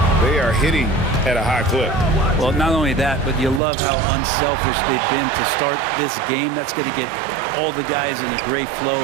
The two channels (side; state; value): left; drops out; at 3.6 s